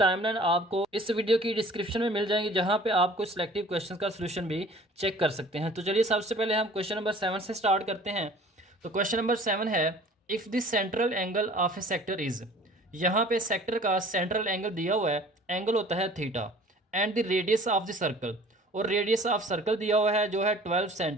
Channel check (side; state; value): both; normal; correlation 0.49